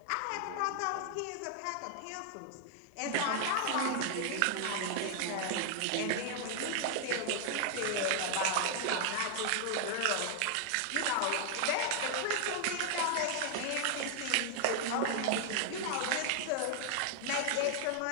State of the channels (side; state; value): both; different; correlation 0.00